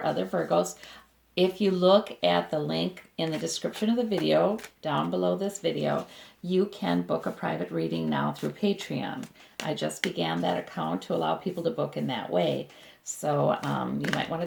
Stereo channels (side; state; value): both; identical; correlation 1.00